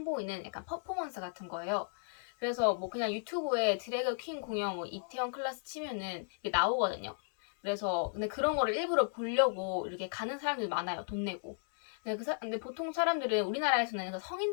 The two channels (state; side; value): silent; right; digital silence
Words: 약간 퍼포먼스 같은 거예요. 그래서 뭐 그냥 유튜브에 드래그 퀸 공연 이태원 클래스 치면은 이게 나오거든요. 그래서 근데 그런 거를 일부러 보려고 이렇게 가는 사람들 많아요. 돈 내고. 근데 보통 사람들은 우리나라에서는 그